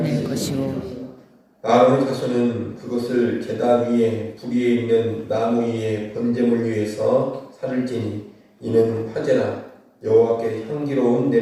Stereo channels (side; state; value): both; identical; correlation 1.00